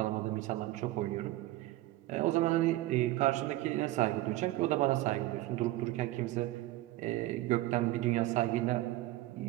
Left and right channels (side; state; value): left; quieter; 17.1 dB